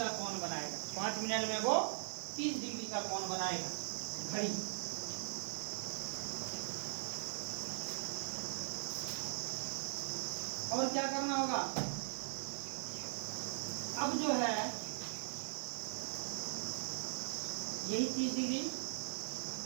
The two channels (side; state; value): left; silent; digital silence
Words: कोण बनाएगा। 5 मिनट में वो 30 डिग्री का कोण बनाएगा घड़ी। और क्या करना होगा, अब जो है यही 30 डिग्री।